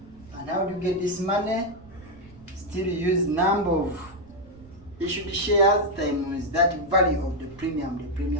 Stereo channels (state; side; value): noise; right; rumble, 22 dB below the sound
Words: And how do you get this money? Still use number of issued shares times that value of the